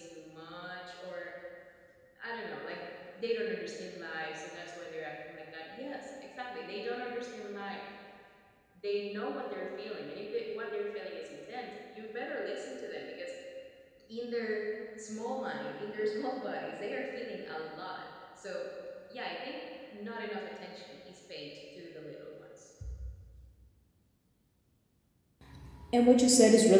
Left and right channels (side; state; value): both; identical; correlation 1.00